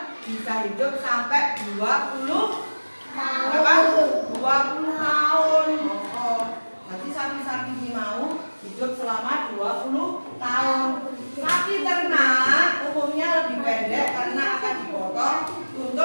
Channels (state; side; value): inverted; both; correlation -1.00